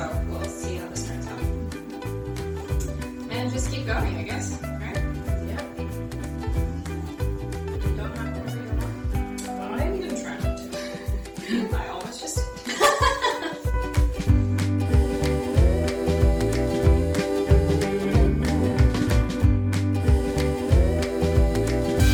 we'll see how this turns out. And just keep going, I guess, right? Yeah. Don't have to worry about it. I'm gonna try not to. I almost just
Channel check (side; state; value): both; identical; correlation 1.00